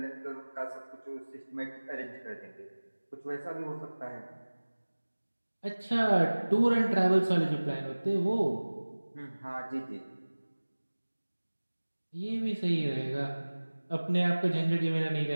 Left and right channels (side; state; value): both; inverted; correlation -1.00